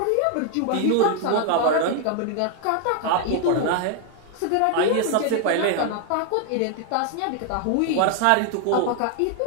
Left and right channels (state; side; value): different; both; correlation 0.00